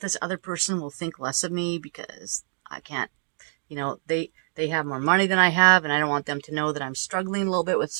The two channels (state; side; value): silent; left; 61 dB below the other